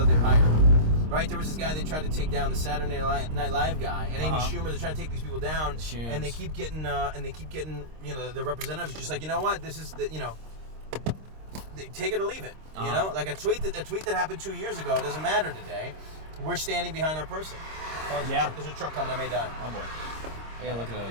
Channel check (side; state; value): left; late; 26 ms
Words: they've hired. Right, there was this guy they tried to take down, the Saturday Night Live guy, and amyschumer. They're trying to take these people down, and they keep getting, the representatives just like, you know what, this is take it or leave it. Like a tweet that happened 2 years ago. It doesn't matter today. We're standing behind our person. Oh, there's a truck coming. I may die. Oh boy. I gotta look